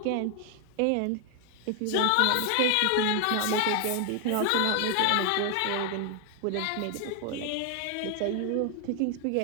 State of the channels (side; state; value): both; different; correlation 0.00